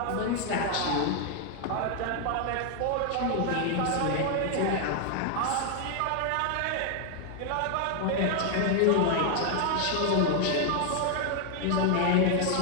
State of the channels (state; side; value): different; both; correlation 0.00